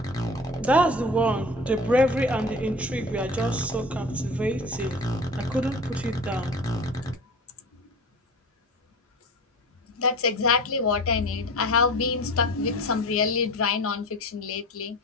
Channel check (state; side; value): normal; both; correlation 0.37